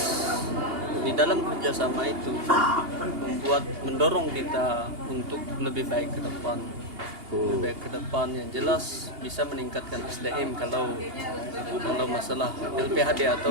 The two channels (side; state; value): left; late; 2.8 ms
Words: di dalam kerjasama itu mendorong kita untuk lebih baik ke depan. Lebih baik ke depan yang jelas bisa meningkatkan SDM kalau masalah LPHD